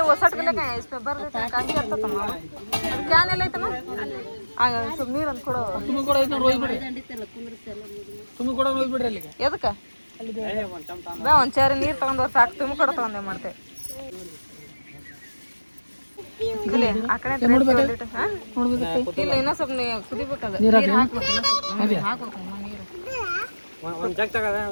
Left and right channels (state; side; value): inverted; both; correlation -1.00